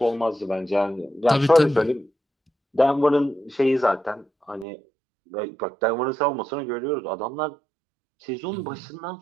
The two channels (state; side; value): drops out; left; at 4.7 s